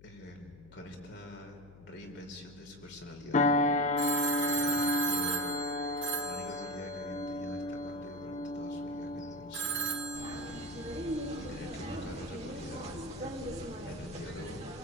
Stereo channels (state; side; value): noise; left; hum, 21 dB below the sound